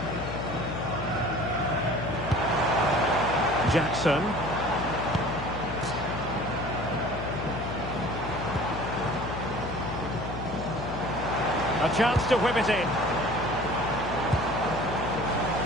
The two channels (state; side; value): noise; left; hum, 7 dB below the sound